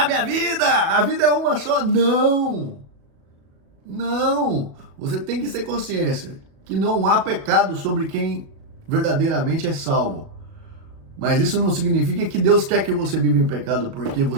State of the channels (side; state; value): left; late; 37 ms